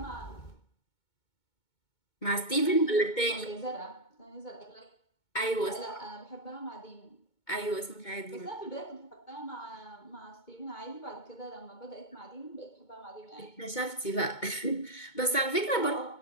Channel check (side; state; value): right; late; 2.2 ms